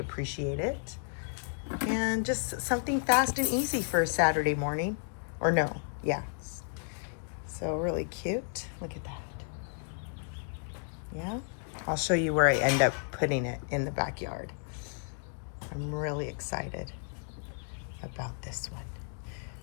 it. And just something fast and easy for a Saturday morning. Or no, yeah. So really cute. Look at that. Yeah. I'll show you where I end up putting it in the backyard. I'm really excited about this one.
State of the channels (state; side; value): silent; right; 56 dB below the other